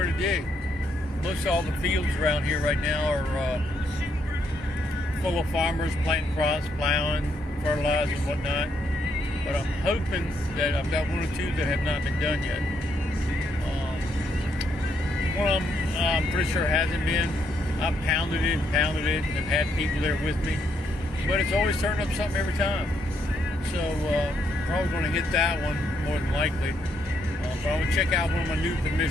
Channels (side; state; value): both; normal; correlation 0.75